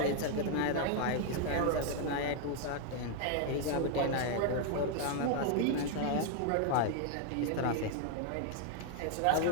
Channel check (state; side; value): different; both; correlation 0.00